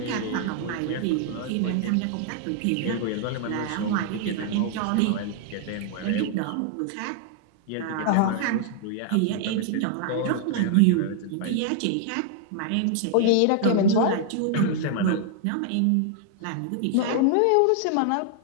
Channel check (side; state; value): both; different; correlation 0.00